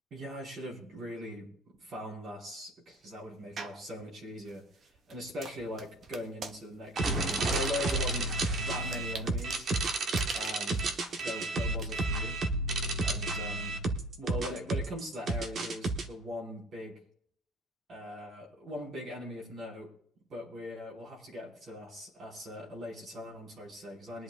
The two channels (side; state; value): both; normal; correlation 0.46